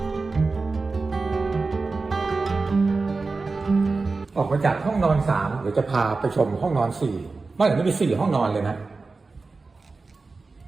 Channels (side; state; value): left; quieter; 3.9 dB